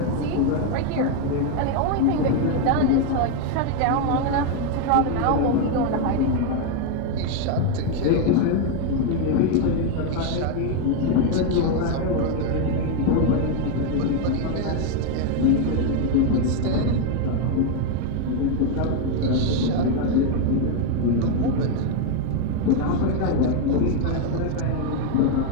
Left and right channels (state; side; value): different; both; correlation 0.01